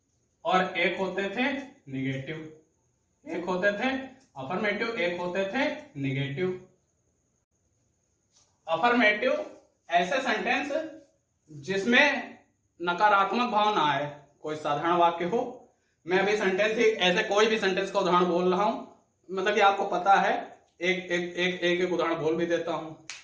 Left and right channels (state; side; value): identical; both; correlation 1.00